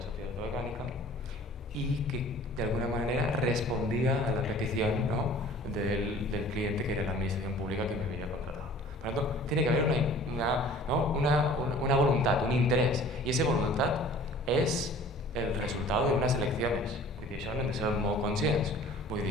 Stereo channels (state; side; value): normal; both; correlation 0.48